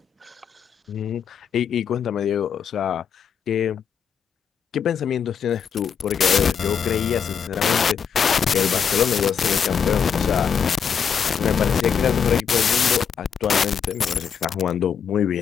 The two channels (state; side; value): quieter; right; 7.2 dB